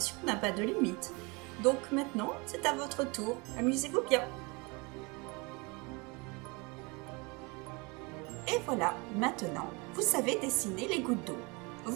n'a pas de limite. Donc maintenant, c'est à votre tour, amusez-vous bien. Et voilà, maintenant, vous savez dessiner les gouttes d'eau.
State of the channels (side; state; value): left; quieter; 28.2 dB